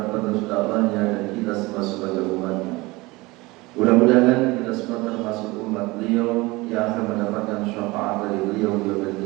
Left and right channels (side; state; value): left; quieter; 22.2 dB